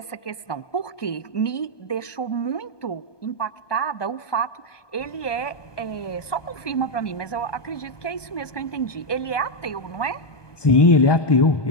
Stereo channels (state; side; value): late; right; 1.2 ms